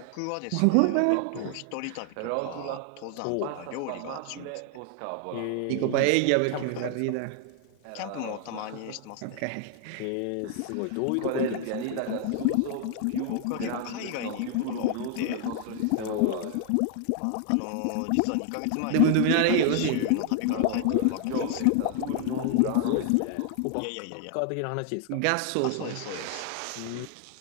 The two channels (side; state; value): both; different; correlation 0.00